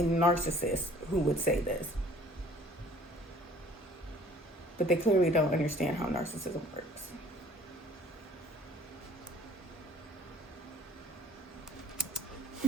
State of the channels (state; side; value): normal; both; correlation 0.53